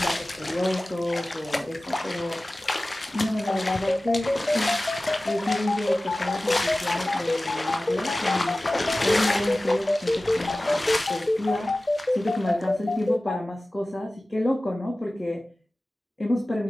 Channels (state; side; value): normal; both; correlation 0.97